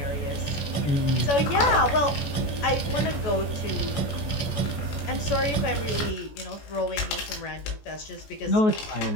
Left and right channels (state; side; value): late; right; 14 ms